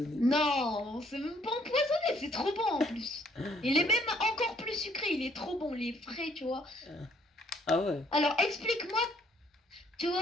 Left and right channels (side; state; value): both; normal; correlation 0.65